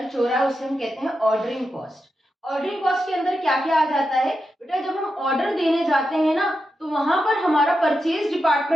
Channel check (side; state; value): both; normal; correlation 0.88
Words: हो रहा है उसे हम कहते हैं ऑर्डरिंग कॉस्ट। ऑर्डरिंग कॉस्ट के अंदर क्या क्या आ जाता है बेटा, जब हम ऑर्डर देने जाते हैं ना तो वहां पर हमारा परचेज